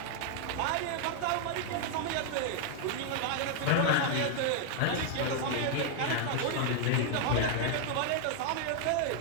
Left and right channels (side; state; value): both; different; correlation 0.00